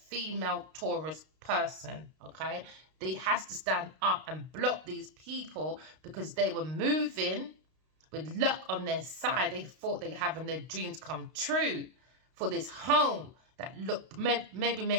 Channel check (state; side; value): late; left; 32 ms